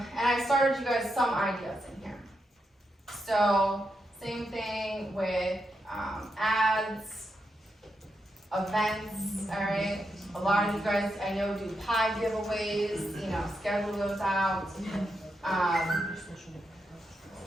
I started you guys some ideas in here. So, same thing with ads, events, alright? A lot of you guys, I know, do pie giveaways, you know, schedule those out.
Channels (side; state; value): both; normal; correlation 0.84